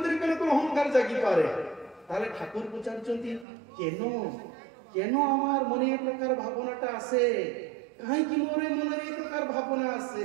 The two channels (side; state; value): left; drops out; at 3.5 s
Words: কোন অহংকার জাগি পারে? তাহলে ঠাকুর পচারুଛନ୍ତି, কেন আমার মনে এই প্রকার ভাবনাটা আসে, কাহিঁকি মোর মনে এই প্রকার ভাবনা